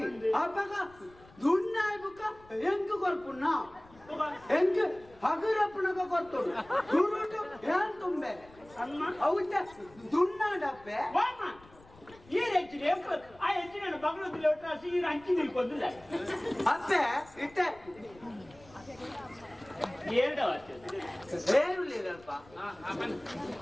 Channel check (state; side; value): noise; left; rumble, 25 dB below the sound